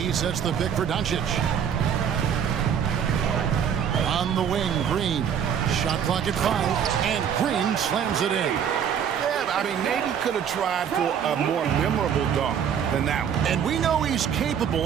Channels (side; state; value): left; quieter; 8.2 dB